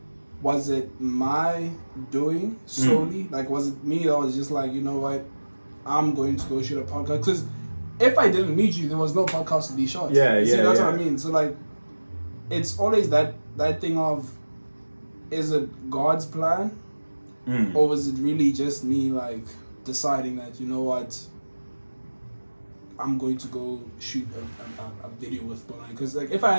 my doing solely? Like, was it me that was just like, you know what, I'm going to go shoot a podcast? Because if I didn't meet you, there was no podcast to be shot. That's what I mean. So like, it's always that thing of, is it God's plan, or was it really just me like deciding that, you know what, I'm going to go shoot a video with Bongani? Because like, if I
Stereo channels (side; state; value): both; inverted; correlation -1.00